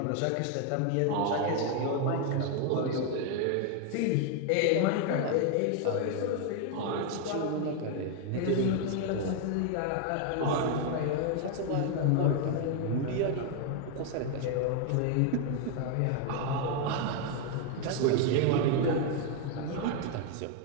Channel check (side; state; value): both; different; correlation 0.01